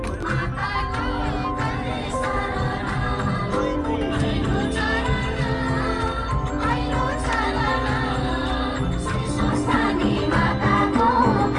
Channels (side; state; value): both; identical; correlation 1.00